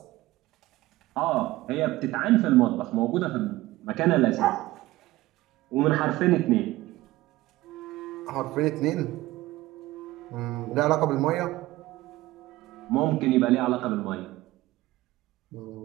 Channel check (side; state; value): left; quieter; 17.7 dB